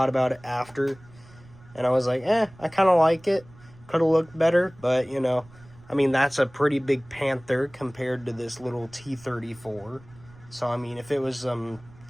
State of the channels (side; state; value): right; noise; rumble, 24 dB below the sound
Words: about it after, and I was like, I kind of like it. Could have looked better, but, you know, I mean, that's a pretty big Panther compared to this little T-34. So, I mean, if it was